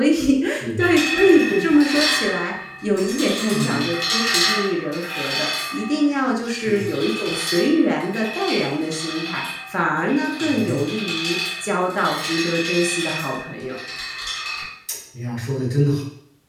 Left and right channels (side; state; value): both; identical; correlation 1.00